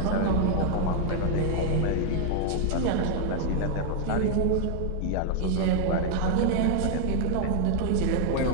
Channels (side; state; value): both; different; correlation 0.00